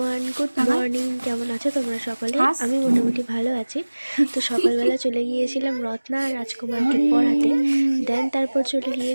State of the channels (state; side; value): inverted; both; correlation -1.00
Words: good morning. কেমন আছো তোমরা সকলে? আমি মোটামুটি ভালো আছি। তো সকালবেলা চলে গিয়েছিলাম রত্না আর রাজকুমারকে পড়াতে, দেন তারপর চলে